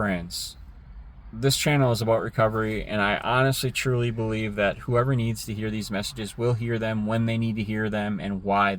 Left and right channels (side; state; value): both; identical; correlation 1.00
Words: this channel is about recovery, and I honestly, truly believe that whoever needs to hear these messages will hear them when they need to hear them and why